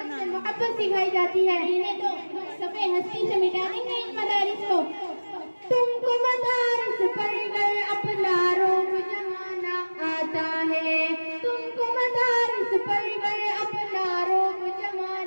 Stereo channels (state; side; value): inverted; both; correlation -1.00